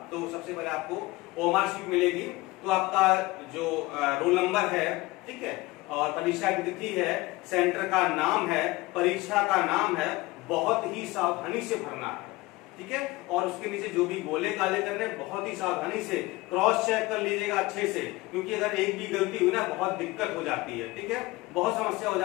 तो सबसे पहले आपको ओएमआर शीट मिलेगी, तो आपका जो रोल नंबर है, ठीक है, और परीक्षा की तिथि है, सेंटर का नाम है, परीक्षा का नाम है, बहुत ही सावधानी से भरना है। ठीक है, और उसके नीचे जो भी गोले काले करने बहुत ही सावधानी से क्रॉस चेक कर लीजिएगा अच्छे से, क्योंकि अगर एक भी गलती हुई ना बहुत दिक्कत हो जाती है। ठीक है, बहुत समस्या हो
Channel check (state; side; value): quieter; right; 20.8 dB